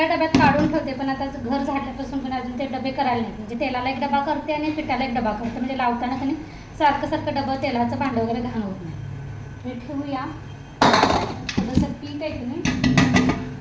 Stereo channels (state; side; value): identical; both; correlation 1.00